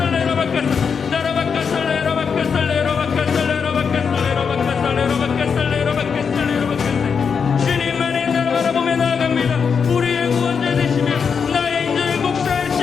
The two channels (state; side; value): quieter; right; 6.2 dB